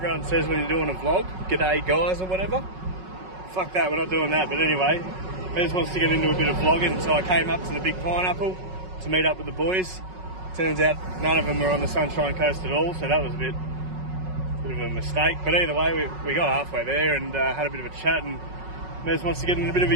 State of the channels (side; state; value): left; late; 5.4 ms